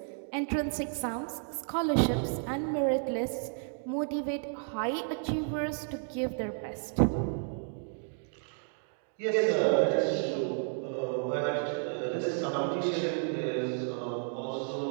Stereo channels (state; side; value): silent; left; 56 dB below the other